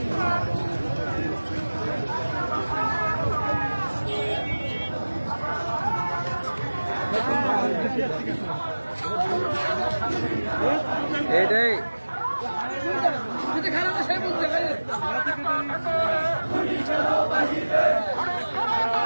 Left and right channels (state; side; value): inverted; both; correlation -1.00